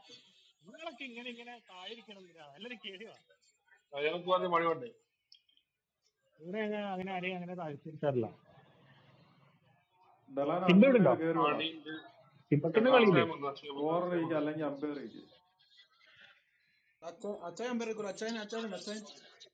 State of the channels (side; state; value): both; identical; correlation 1.00